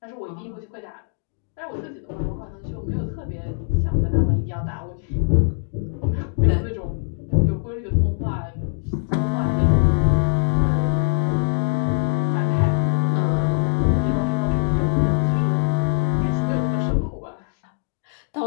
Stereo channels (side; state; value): right; silent; digital silence